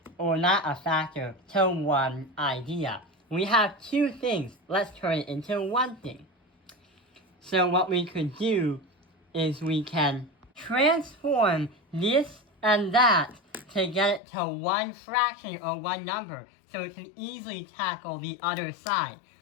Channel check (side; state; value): right; drops out; at 14.2 s